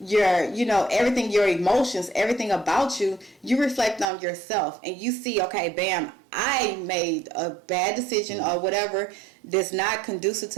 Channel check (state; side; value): drops out; left; at 4.0 s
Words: everything, your emotions, everything about you. You reflect on yourself and you see, okay, bam, I made a bad decision or whatever that's not conducive